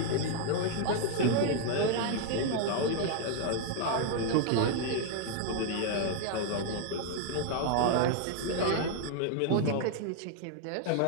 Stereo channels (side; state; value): both; different; correlation 0.00